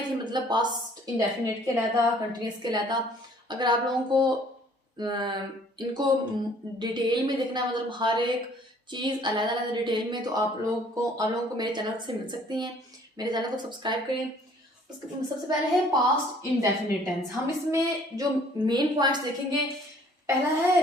थी, मतलब पास्ट इंडेफिनिट के अलग, कंटिन्यूअस के अलग। अगर आप लोगों को इनको डिटेल में देखना है, मतलब हर एक चीज़ अलग अलग डिटेल में, तो आप लोगों को मेरे चैनल से मिल सकती हैं। मेरे चैनल को सब्सक्राइब करें। उसके सबसे पहले है पास्ट इंडेफिनिट टेंस। हम इसमें जो मेन पॉइंट्स देखेंगे, पहला है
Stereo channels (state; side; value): normal; both; correlation 0.57